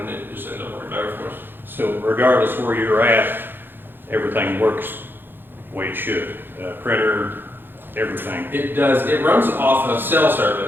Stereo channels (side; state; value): left; late; 0.099 ms